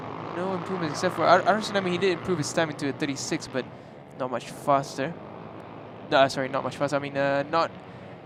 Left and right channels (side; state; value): both; identical; correlation 1.00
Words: no improvements except for Ara Tsunami. He did improve his time into a 36, but not much faster. No, sorry, not much faster. I mean, not